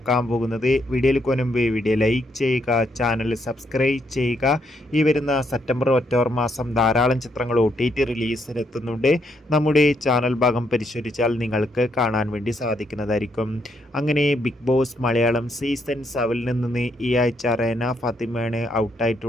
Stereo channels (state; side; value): normal; both; correlation 0.75